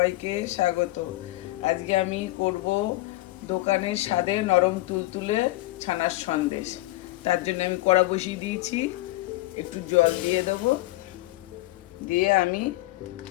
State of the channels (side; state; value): right; quieter; 19.0 dB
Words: স্বাগত। আজকে আমি করব দোকানের স্বাদে নরম তুলতুলে ছানার সন্দেশ। তার জন্য আমি কড়া বসিয়ে দিয়েছি, একটু জল দিয়ে দেবো। দিয়ে আমি